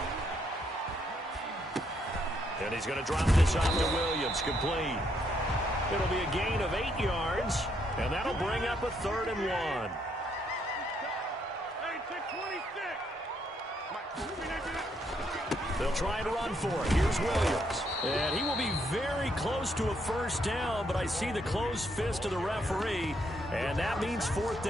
And he's going to drop this off to Williams. Complete. It'll be a gain of 8 yards, and that'll bring up a 3rd and 1. They'll try and run for it. Here's Williams. And he will be very close to a first down, but I see the closed fist of the referee, and that means 4th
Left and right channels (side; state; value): both; normal; correlation 0.74